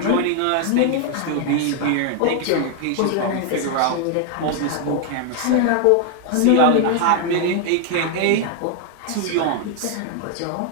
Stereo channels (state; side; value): different; both; correlation 0.00